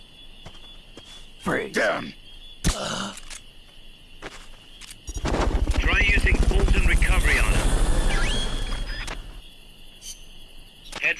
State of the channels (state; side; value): identical; both; correlation 1.00